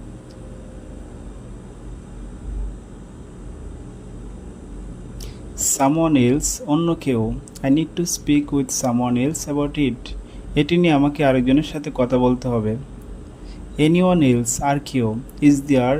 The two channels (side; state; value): both; identical; correlation 1.00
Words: Someone else অন্য কেউ I need to speak with someone else about it. এটি নিয়ে আমাকে আরেকজনের সাথে কথা বলতে হবে। Anyone else আর কেউ Is there